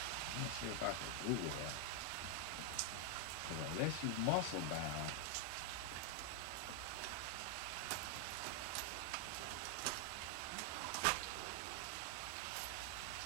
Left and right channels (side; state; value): both; different; correlation 0.00